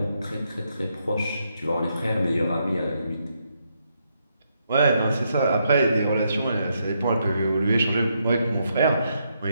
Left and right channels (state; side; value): inverted; both; correlation -0.78